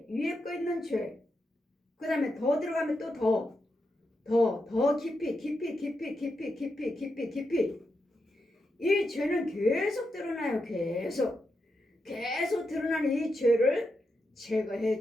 거 있는 죄, 그 다음에 더 들어가면 또 더 깊이 이 죄는 계속 드러나요. 계속 드러나는 이 죄를 제거해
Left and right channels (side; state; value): both; normal; correlation 0.86